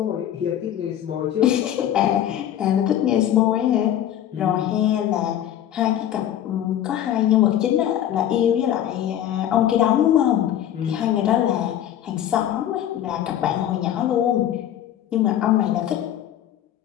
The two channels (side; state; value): right; quieter; 11.1 dB